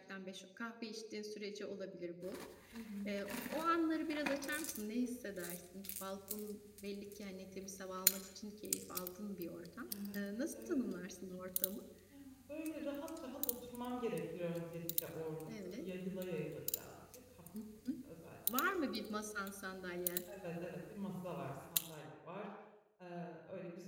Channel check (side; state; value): both; identical; correlation 1.00